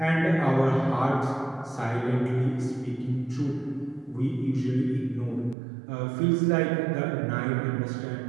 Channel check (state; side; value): drops out; left; at 5.6 s